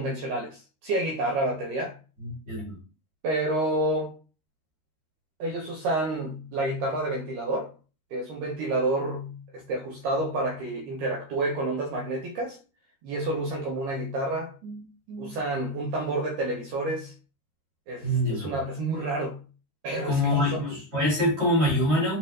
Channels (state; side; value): late; left; 13 ms